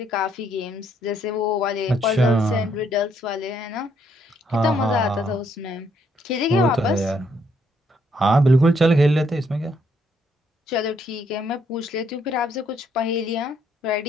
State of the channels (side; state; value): both; normal; correlation 0.71